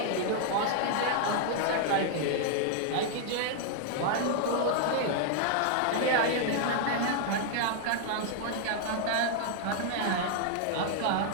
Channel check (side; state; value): both; different; correlation -0.01